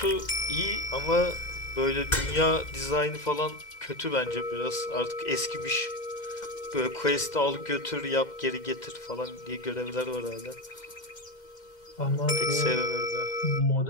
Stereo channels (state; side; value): late; right; 2.1 ms